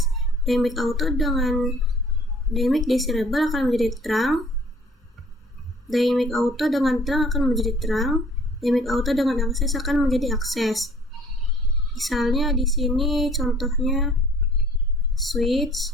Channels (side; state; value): both; normal; correlation 0.54